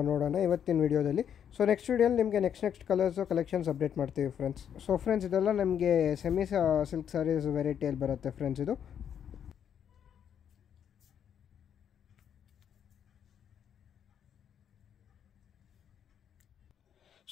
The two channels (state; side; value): quieter; right; 8.7 dB